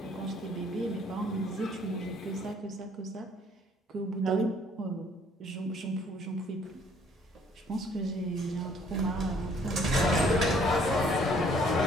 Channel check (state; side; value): normal; both; correlation 0.61